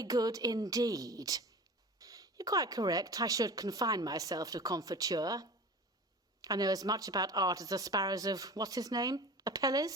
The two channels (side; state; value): both; normal; correlation 0.37